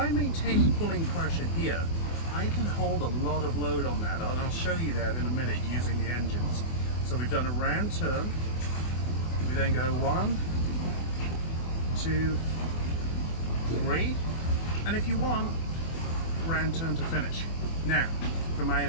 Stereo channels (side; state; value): right; late; 24 ms